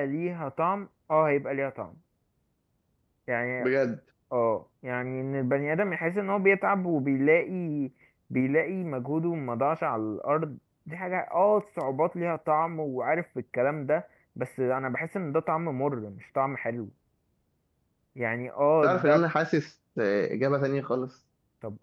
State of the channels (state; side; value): identical; both; correlation 1.00